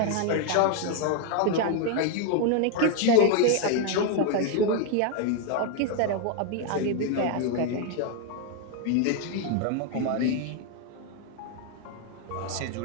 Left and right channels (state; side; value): different; both; correlation 0.01